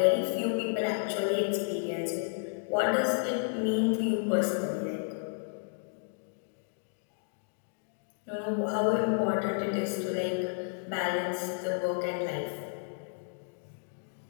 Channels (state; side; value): silent; right; digital silence